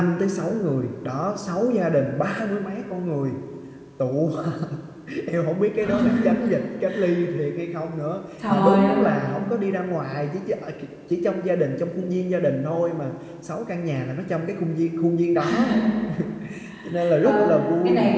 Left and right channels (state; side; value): identical; both; correlation 1.00